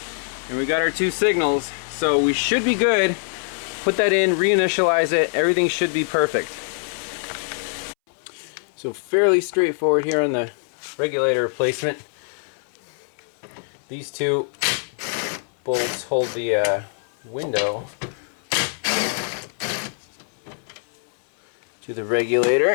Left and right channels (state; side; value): silent; right; 63 dB below the other